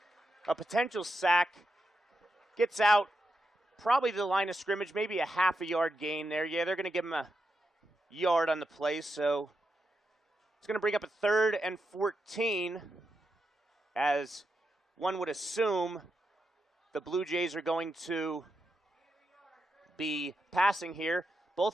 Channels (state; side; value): normal; both; correlation 0.86